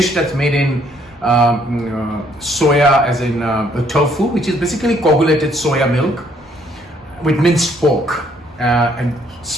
that's made in soya, as in tofu, which is basically coagulated soya milk with minced pork, and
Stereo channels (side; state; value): both; normal; correlation 0.66